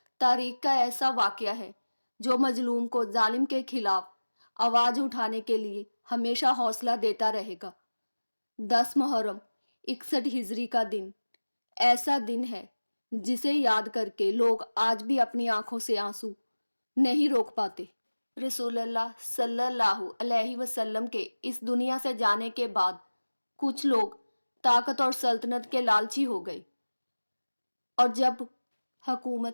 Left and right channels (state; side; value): inverted; both; correlation -1.00